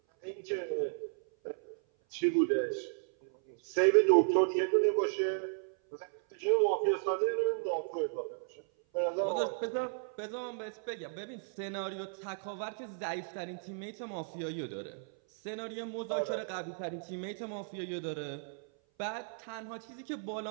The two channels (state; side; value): silent; left; 55 dB below the other